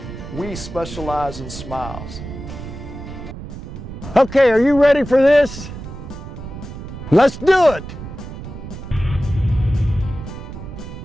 we specialize in smiles. Okay, are you ready for this? Let's do it!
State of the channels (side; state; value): right; noise; rumble, 10 dB below the sound